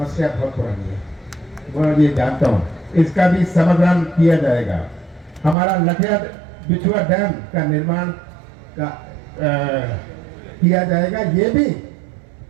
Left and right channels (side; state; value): left; drops out; at 5.6 s